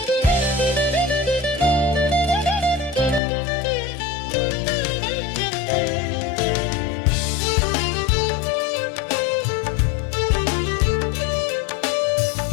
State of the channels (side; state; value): right; drops out; at 3.2 s